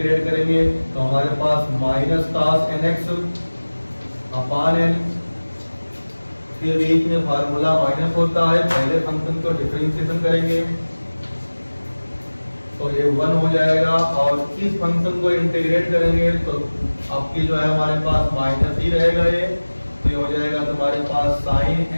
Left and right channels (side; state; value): both; inverted; correlation -1.00